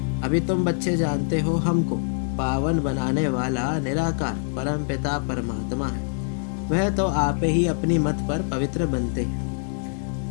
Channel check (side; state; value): right; silent; 60 dB below the other